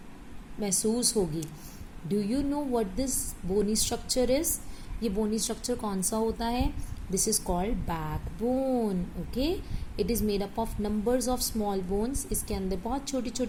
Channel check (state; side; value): identical; both; correlation 1.00